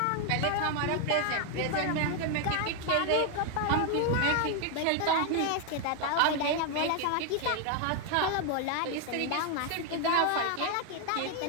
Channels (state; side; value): different; both; correlation 0.01